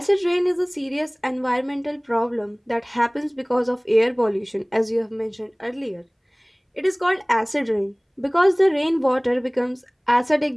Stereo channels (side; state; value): both; identical; correlation 1.00